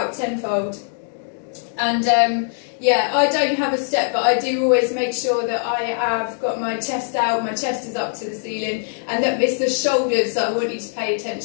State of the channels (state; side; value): silent; right; digital silence